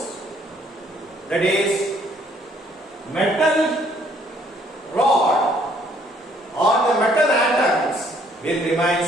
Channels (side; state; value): both; normal; correlation 0.64